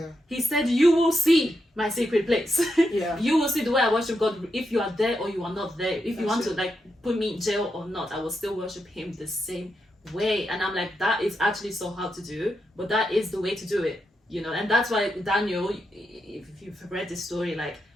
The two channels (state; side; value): normal; both; correlation 0.84